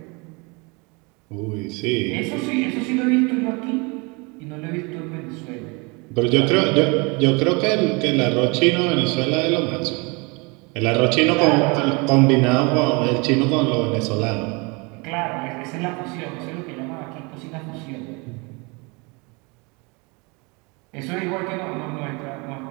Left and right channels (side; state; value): left; quieter; 28.9 dB